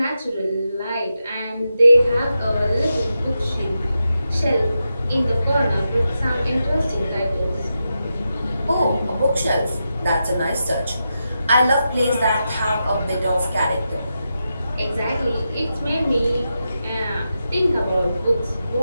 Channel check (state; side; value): inverted; both; correlation -0.88